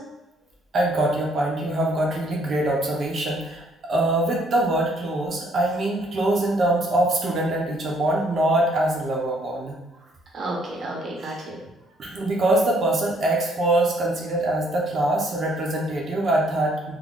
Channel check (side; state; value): both; normal; correlation 0.66